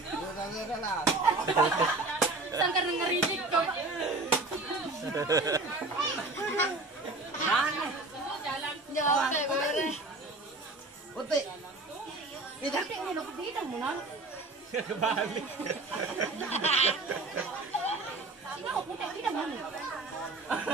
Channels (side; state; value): left; quieter; 3.1 dB